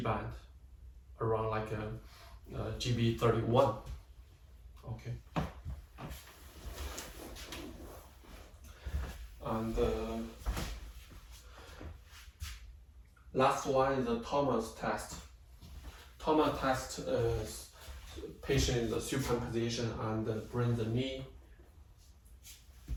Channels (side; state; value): both; identical; correlation 1.00